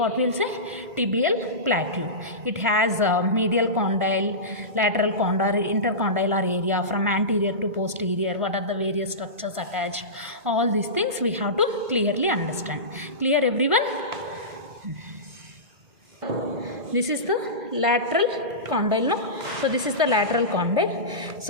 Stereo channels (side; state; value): left; late; 2.0 ms